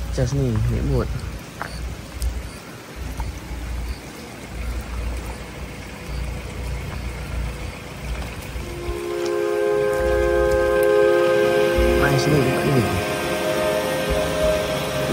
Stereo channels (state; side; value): identical; both; correlation 1.00